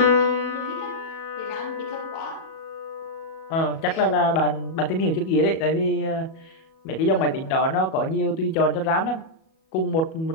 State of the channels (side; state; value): right; late; 37 ms